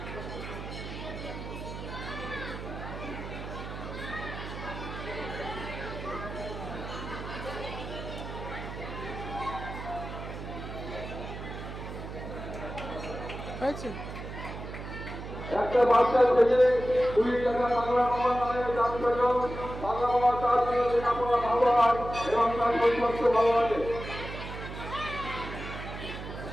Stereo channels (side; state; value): right; noise; hum, 9 dB below the sound